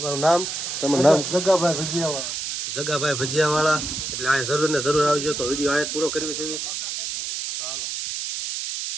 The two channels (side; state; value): right; noise; hiss, 4 dB below the sound